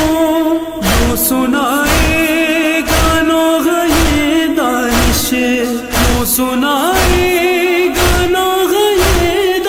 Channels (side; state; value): both; identical; correlation 1.00